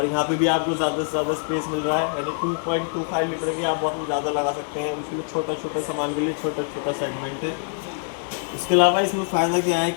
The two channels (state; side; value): silent; right; 62 dB below the other